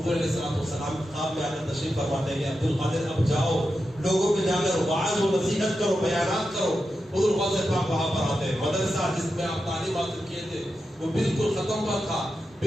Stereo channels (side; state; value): both; normal; correlation 0.89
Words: علیہ السلام خواب میں آ کر تشریف فرماتے ہیں کہ عبد القادر اب جاؤ, لوگوں پہ جا کر وعظ و نصیحت کرو, بیانات کرو. حضور غوث پاک وہاں پر آتے ہیں. مدرسہ جس میں آپ تعلیم حاصل کیے تھے وہ بالکل ختم پر تھا.